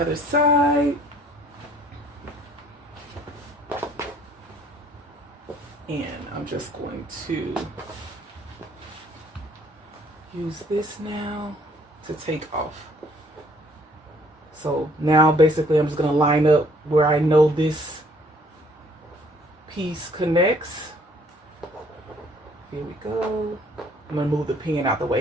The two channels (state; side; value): normal; both; correlation 0.61